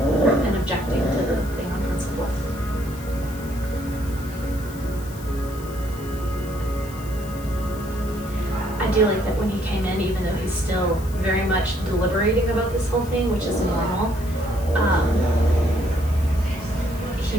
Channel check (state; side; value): noise; left; hiss, 18 dB below the sound